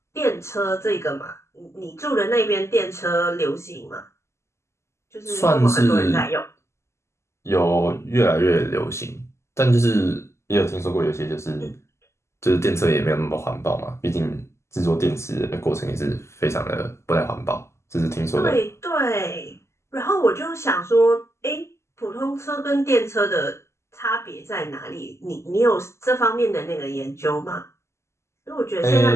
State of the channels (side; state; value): right; late; 0.13 ms